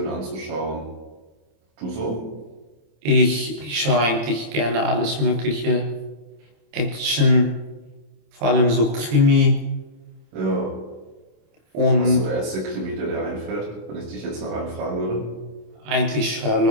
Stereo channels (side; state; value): left; late; 26 ms